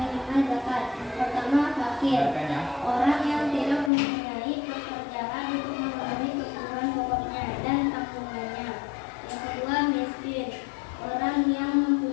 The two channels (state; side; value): drops out; right; at 3.9 s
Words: zakat. Pertama, fakir, orang yang tidak mempunyai pekerjaan untuk memenuhi kebutuhan pokoknya dan tanggungannya. Yang kedua, miskin, orang yang